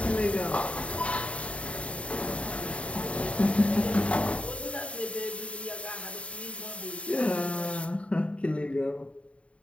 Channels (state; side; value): late; right; 0.062 ms